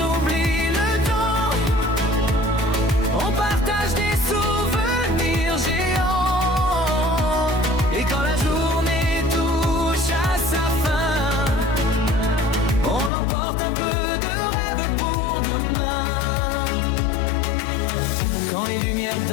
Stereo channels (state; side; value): drops out; right; at 13.1 s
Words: oublie le temps, on partage des souvenirs géants. Et quand la journée touche à sa fin, on emporte un peu de rêve pour demain. Quand les lumières